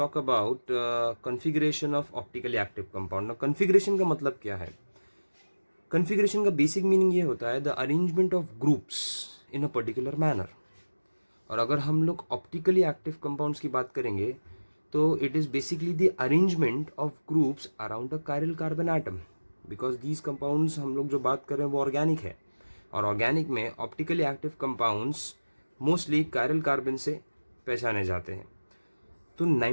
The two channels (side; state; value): both; inverted; correlation -1.00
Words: about configuration of optically active compound. ना configuration का मतलब क्या है? कॉन्फ़िगरेशन का बेसिक मीनिंग ये होता है the arrangement of groups in a particular manner. और अगर हम लोग ऑप्टिकली एक्टिव कंपाउंड्स की बात करेंगे तो it is basically the arrangement of groups around the chiral carbon atom. Because these compounds हम लोग जो बात कर रहे हैं वो ऑर्गेनिक है, और ऑर्गेनिक में optically active compounds mostly chiral carbon से पहचाने जाते हैं। तो